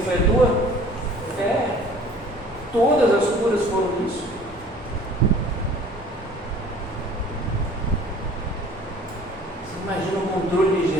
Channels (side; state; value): both; normal; correlation 0.50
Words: foi a tua fé. Todas as curas foram isso. Você imagina o controle de